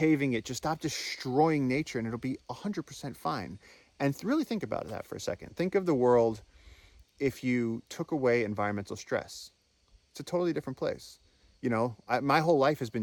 it. Just stop destroying nature and it'll be 100% fine. And really think about that for a second. Think of the world if you took away environmental stress, it's a totally different place. You know, my whole life has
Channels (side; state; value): both; identical; correlation 1.00